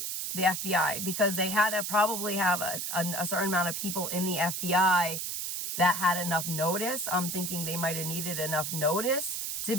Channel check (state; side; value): noise; right; hiss, 3 dB below the sound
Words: the FBI because they had to probably have a certain amount of people in the FBI that had enough notice. I'm thinking they might have needed enough notice to